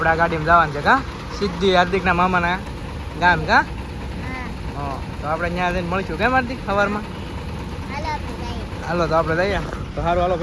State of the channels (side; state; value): both; identical; correlation 1.00